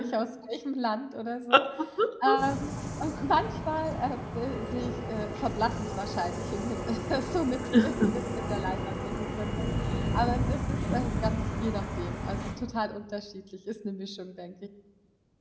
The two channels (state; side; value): identical; both; correlation 1.00